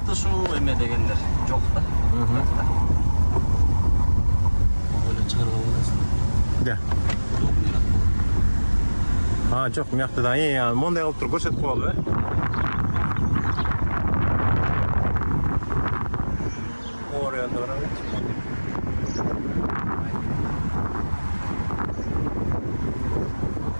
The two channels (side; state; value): both; inverted; correlation -1.00